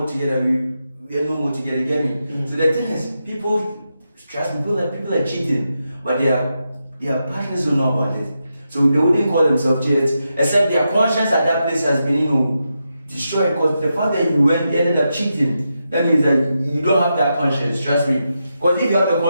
together. We are no more together. Get me? So the thing is, people, trust me, people are cheating, but their partners don't know about it. So they wouldn't call themselves cheats, except their conscience at that place has been, destroyed. Because the fact that you ended up cheating, that means that you don't have that conscience. Trust me. Because if you have the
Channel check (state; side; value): inverted; both; correlation -0.86